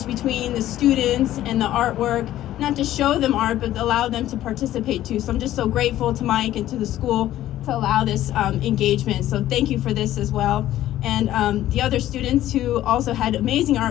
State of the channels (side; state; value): right; quieter; 13.5 dB